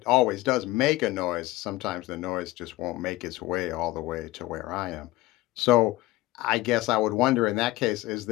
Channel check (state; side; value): quieter; right; 18.6 dB